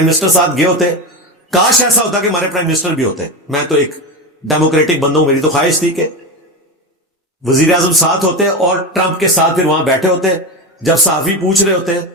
منسٹر ساتھ گئے ہوتے. کاش ایسا ہوتا کہ ہمارے پرائم منسٹر بھی ہوتے. میں تو ایک ڈیموکریٹک بندہ ہوں، میری تو خواہش تھی کہ وزیر اعظم ساتھ ہوتے اور ٹرمپ کے ساتھ پھر وہاں بیٹھے ہوتے. جب صحافی پوچھ رہے ہوتے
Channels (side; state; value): both; normal; correlation 0.19